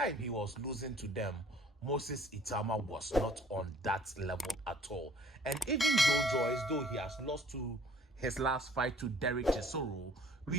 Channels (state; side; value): normal; both; correlation 0.55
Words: he was losing to them, Moses Itauma was not on that level at all. And even Joe Joyce, though he has lost to his last fight to Derek Chisoro,